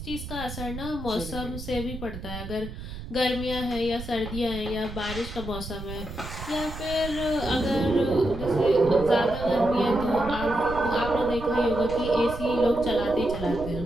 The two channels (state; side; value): noise; right; rumble, 10 dB below the sound